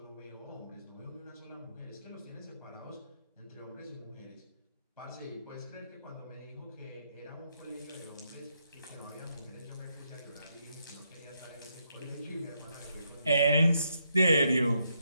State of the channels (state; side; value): inverted; both; correlation -0.79